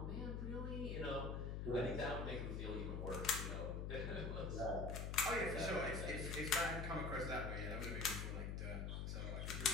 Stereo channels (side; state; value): left; noise; hum, 2 dB below the sound